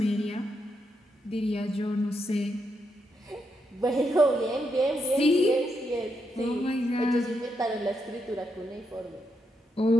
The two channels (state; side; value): normal; both; correlation 0.81